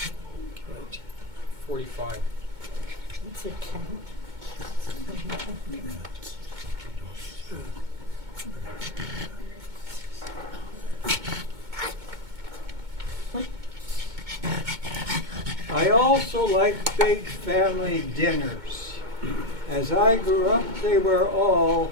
45. It's a 10. also like big family dinners. As I grew up, they were all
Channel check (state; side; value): late; left; 2.2 ms